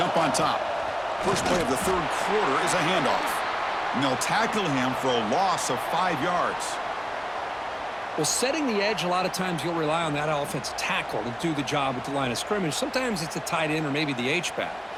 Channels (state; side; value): identical; both; correlation 1.00